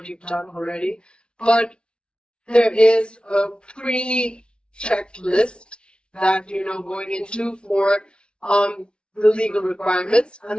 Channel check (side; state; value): right; late; 0.056 ms